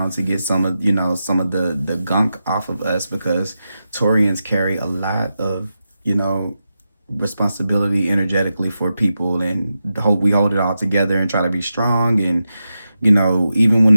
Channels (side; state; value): both; inverted; correlation -0.89